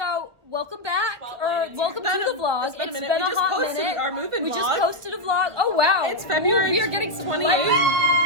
welcome back, or welcome to the vlog. It's been a minute. We just hot posted minute. our moving We vlog. just posted a vlog. Oh wow, It's February we are getting some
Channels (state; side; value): late; left; 1.6 ms